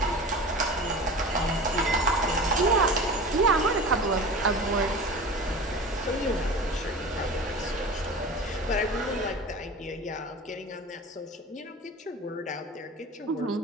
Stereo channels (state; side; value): normal; both; correlation 0.35